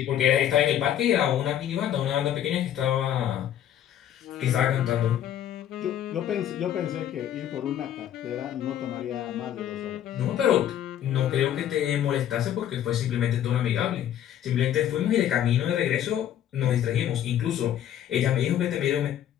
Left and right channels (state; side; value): quieter; right; 10.7 dB